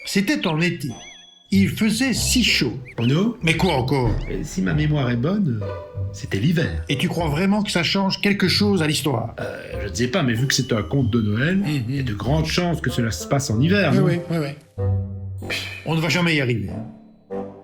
C'était en été. Il faisait si chaud. Bruno, Mais quoi encore? si ma mémoire est bonne, c'était l'hiver. Et tu crois vraiment que ça change quelque chose à l'histoire? Je ne sais pas, mais vu que c'est un conte de Noël, il y a de grandes chances que cela se passe en hiver, non? Oui. On ne va jamais y arriver.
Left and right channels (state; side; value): identical; both; correlation 1.00